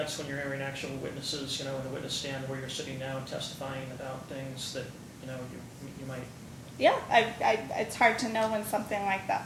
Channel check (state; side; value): identical; both; correlation 1.00